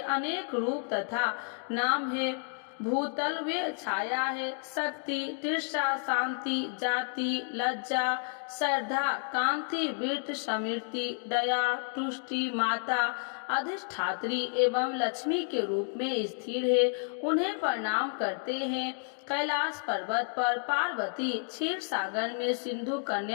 रूप तथा नाम है। भूतल वे छाया है, शक्ति, तृषा, शांति, जाति, लज्जा, श्रद्धा, कांति, वृत्त, समृद्धि, दया, तुष्टि, माता, अधिष्ठात्री एवं लक्ष्मी के रूप में स्थिर है। उन्हें प्रणाम करते हैं। कैलाश पर्वत पर पार्वती, क्षीर सागर में सिंधु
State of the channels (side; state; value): right; silent; 57 dB below the other